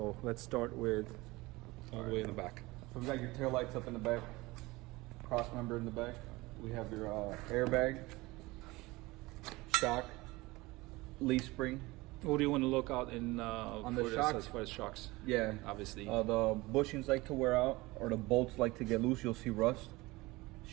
let's start with all the way in the back. So we got your tail lights up in the back, cross member in the back. We have your airbag, shock, leaf spring. What do you want to look out in On the for this shocks? as far as shocks? Yeah, Obviously. the bushings like to wear out, or the bolts like to get loose. You'll see rust.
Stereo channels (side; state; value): left; quieter; 21.4 dB